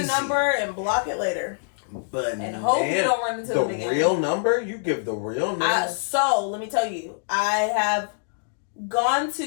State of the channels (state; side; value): silent; right; digital silence